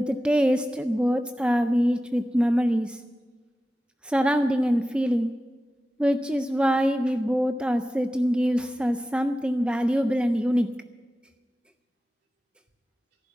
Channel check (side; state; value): both; normal; correlation 0.95